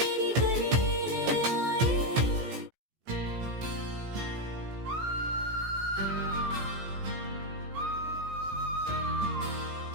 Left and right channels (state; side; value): late; left; 16 ms